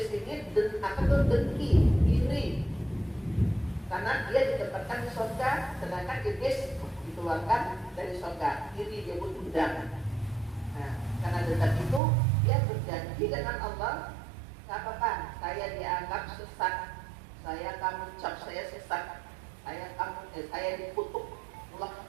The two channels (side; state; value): left; drops out; at 12.0 s